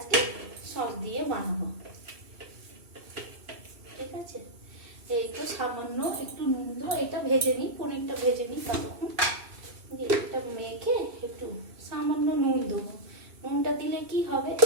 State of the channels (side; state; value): left; late; 2.6 ms